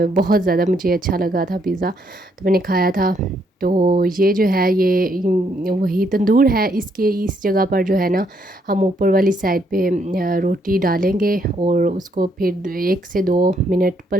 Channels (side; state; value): both; normal; correlation 0.73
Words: बहुत ज़्यादा मुझे अच्छा लगा था पिज़्ज़ा, तो मैंने खाया था। तो ये जो है ये वही तंदूर है, इसके इस जगह पर जो है ना हम ऊपर वाली साइड पे रोटी डालेंगे और उसको फिर 1 से 2 मिनट